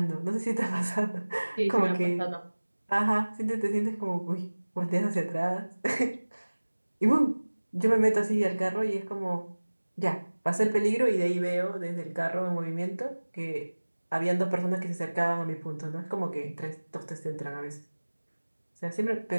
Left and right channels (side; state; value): both; inverted; correlation -1.00